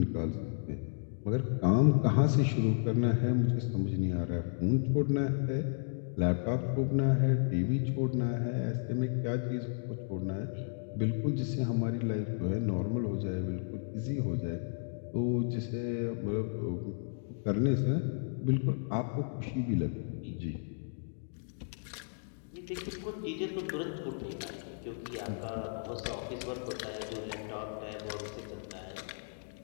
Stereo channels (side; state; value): right; silent; digital silence